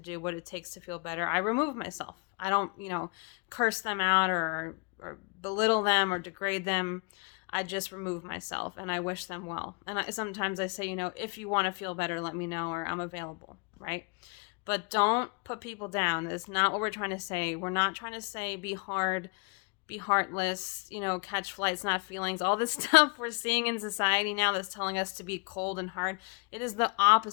what it takes to feel better, I remove myself. I don't, curse them out or belittle them or degrade them. I just remove myself and I wish them well. And sometimes I say, if you want to feel better, let me know, or I'm available, right? But don't put people down. That's not what we're trying to say. We're not trying to say be hard, be heartless, catch flights, not feelings. All this stuff we're seeing in society now that's telling us to be cold and hard. It is the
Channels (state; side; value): quieter; right; 32.0 dB